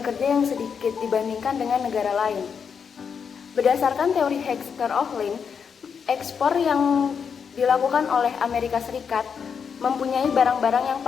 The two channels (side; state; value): right; quieter; 6.6 dB